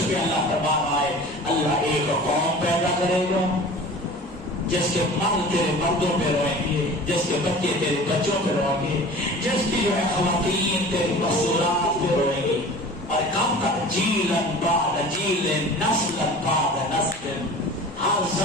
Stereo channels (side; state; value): both; normal; correlation 0.41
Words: پہ اللہ تبارک ہے، اللہ ایک قوم پیدا کرے گا جس کے مرد تیرے مردوں پہ روئیں گے، جس کے بچے تیرے بچوں پہ روئیں گے، جس کی جو ہے خواتین تیری مستورات پہ روئیں گی، اور کب تک جیلن بعد جیلن نسلن بعد نسل، ہر